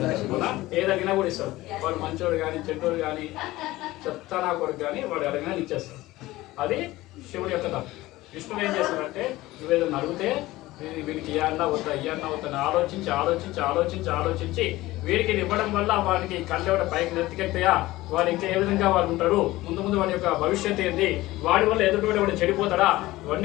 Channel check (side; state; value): right; quieter; 18.0 dB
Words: ఏది అడిగినా కూడా ఇస్తాడు. వాడు మంచోడు కానీ చెడ్డోడు కానీ చెత్త నా కొడుకు కానీ వాడు అడిగినా ఇచ్చేస్తాడు. అది శివుడి యొక్క తప్పు. విష్ణువు ఏం చేస్తాడంటే నువ్వేదన్నా అడిగితే వీడికి ఇయ్యన్నా వద్దా ఆలోచించి ఆలోచించి ఆలోచించి ఆలోచించి వీడికి ఇది ఇవ్వడం వల్ల వాడికి కళ్ళెవడ పైకి నెత్తికెళ్తాయా, వాడు ఇంకా ఏ విధంగా వాడు ఉంటాడు, ముందు వాడి యొక్క భవిష్యత్తు ఏంది, వాడి వల్ల ఎదుటి వాడు చెడిపోతాడా,